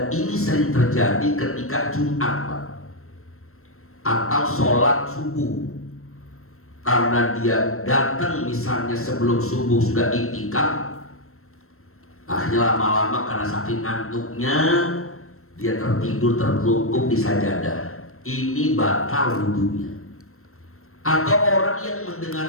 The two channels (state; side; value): late; right; 0.63 ms